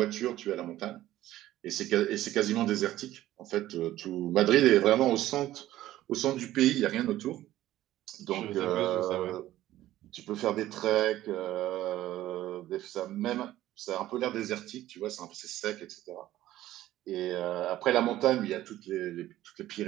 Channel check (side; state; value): left; quieter; 14.5 dB